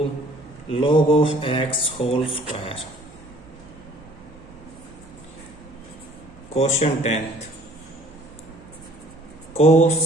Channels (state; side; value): noise; right; hum, 25 dB below the sound